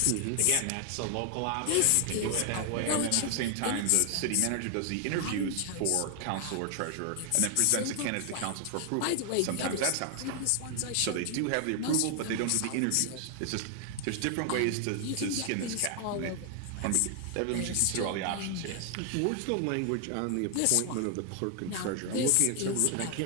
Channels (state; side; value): different; both; correlation 0.00